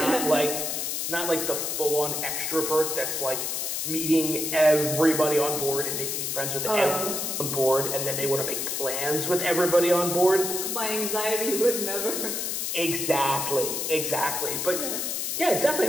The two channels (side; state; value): left; noise; hiss, 2 dB below the sound